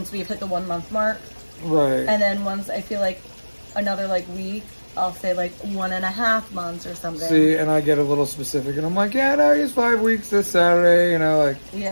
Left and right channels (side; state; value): both; inverted; correlation -1.00